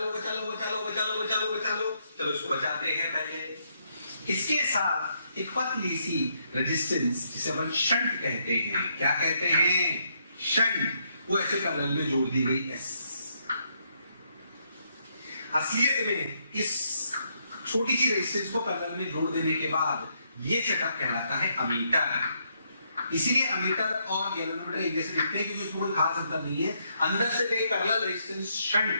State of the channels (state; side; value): inverted; both; correlation -0.75